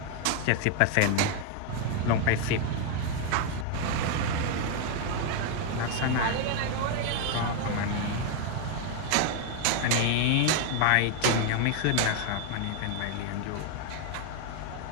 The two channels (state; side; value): different; both; correlation 0.01